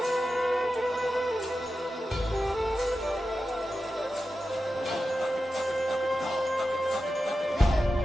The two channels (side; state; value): both; normal; correlation 0.92